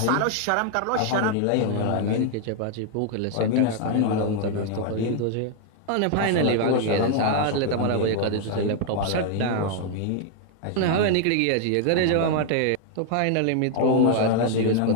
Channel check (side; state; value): both; different; correlation 0.00